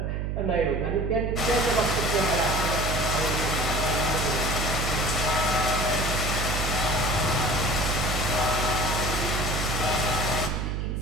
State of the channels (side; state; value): right; noise; hum, 1 dB below the sound